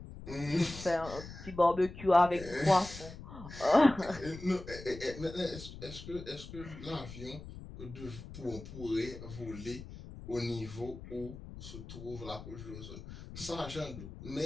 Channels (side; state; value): left; noise; rumble, 13 dB below the sound